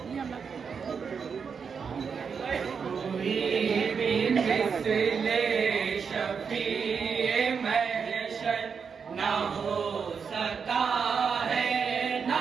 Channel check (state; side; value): quieter; left; 6.1 dB